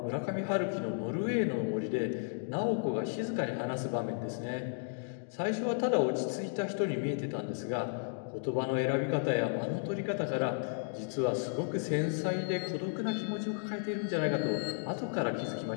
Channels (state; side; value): silent; right; digital silence